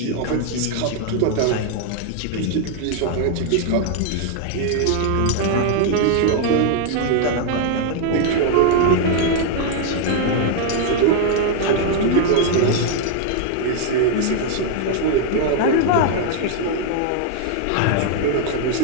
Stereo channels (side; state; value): both; different; correlation 0.00